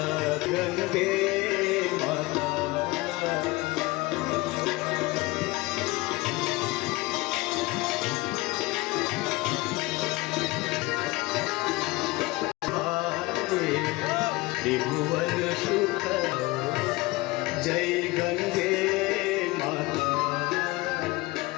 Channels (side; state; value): right; quieter; 21.5 dB